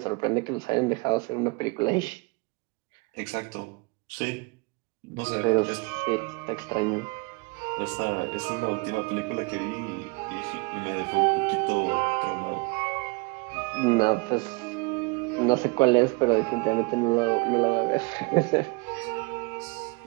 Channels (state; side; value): quieter; left; 28.0 dB